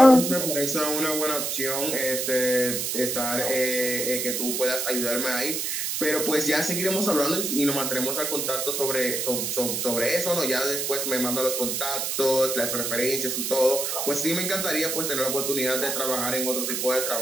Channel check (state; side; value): noise; right; hiss, 1 dB below the sound